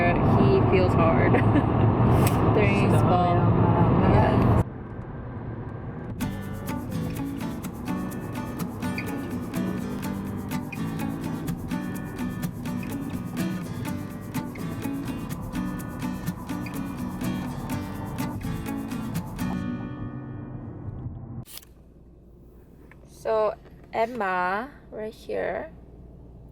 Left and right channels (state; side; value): identical; both; correlation 1.00